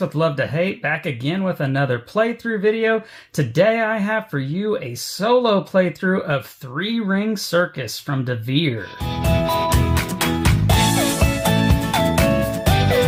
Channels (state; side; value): identical; both; correlation 1.00